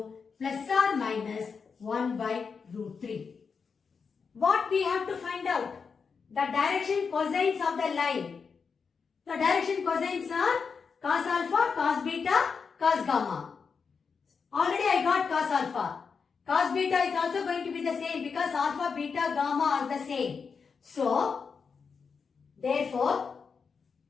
plus or minus 1 by root 3. What we have to find out? The direction cosines of the line The direction cosines are cos alpha, cos beta, cos gamma. Already I got cos alpha. Cos beta is also going to be the same because alpha, beta, gamma are the same. So, therefore,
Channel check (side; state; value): right; quieter; 5.6 dB